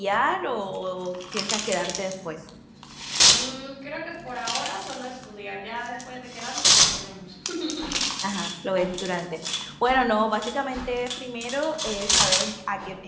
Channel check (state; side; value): identical; both; correlation 1.00